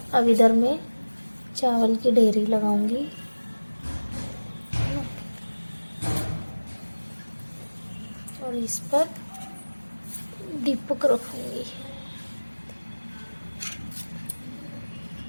अब इधर मैं चावल की ढेरी लगाऊंगी और इस पर दीपक रखूंगी।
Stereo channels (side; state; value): both; inverted; correlation -1.00